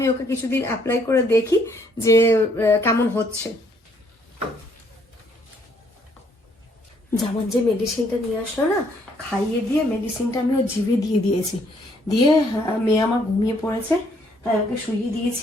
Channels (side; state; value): both; normal; correlation 0.67